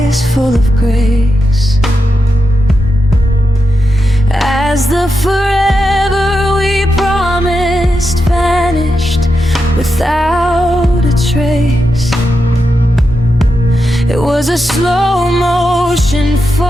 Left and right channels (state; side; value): normal; both; correlation 0.87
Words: full of grace. As the forever we promised vanished without a trace. It was a slow motion